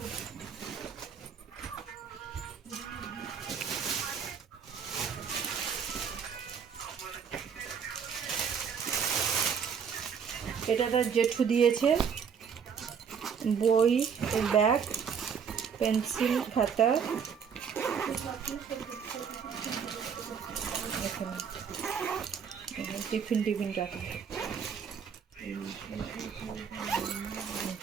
এটা তার জেঠু দিয়েছে। বই, ব্যাগ, পেন্সিল, খাতা, টিফিন রাখা।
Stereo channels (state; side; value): quieter; left; 6.9 dB